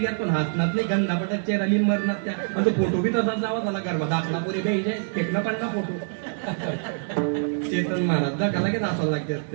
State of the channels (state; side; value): silent; left; digital silence